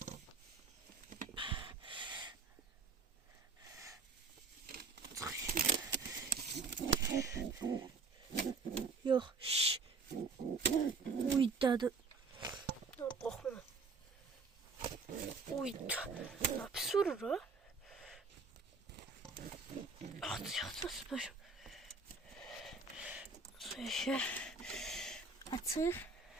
Yok, şşş. Uydadı. Korkma. Uydu. Ne pis vurur o? Atacak süper. Şöyle açık.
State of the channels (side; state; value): left; quieter; 4.4 dB